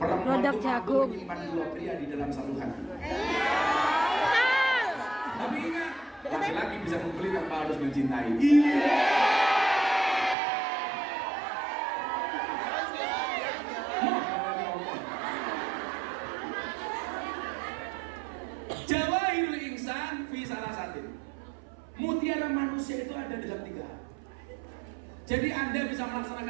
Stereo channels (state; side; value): drops out; left; at 10.4 s